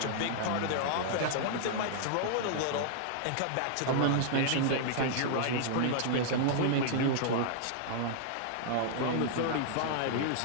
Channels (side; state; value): both; different; correlation -0.01